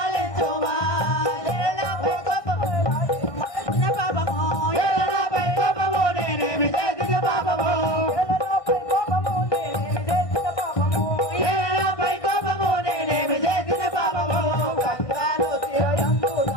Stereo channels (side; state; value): right; late; 1.6 ms